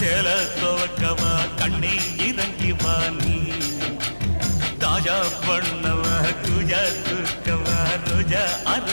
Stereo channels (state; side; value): inverted; both; correlation -1.00